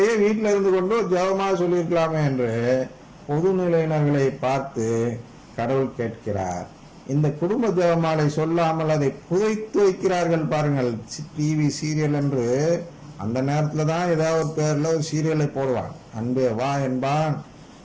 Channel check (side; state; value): both; identical; correlation 1.00